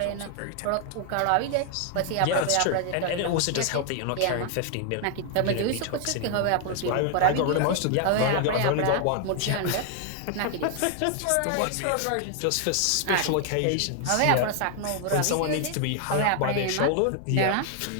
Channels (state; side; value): different; both; correlation 0.00